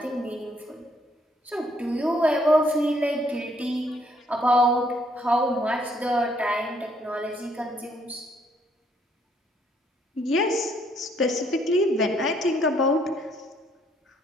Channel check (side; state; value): both; normal; correlation 0.68